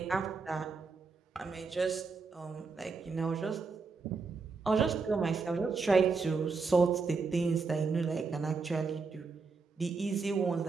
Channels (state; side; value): quieter; left; 4.6 dB